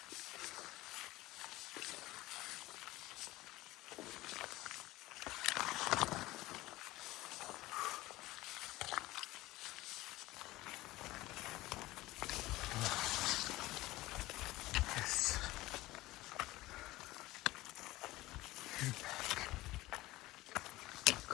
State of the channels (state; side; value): quieter; right; 18.4 dB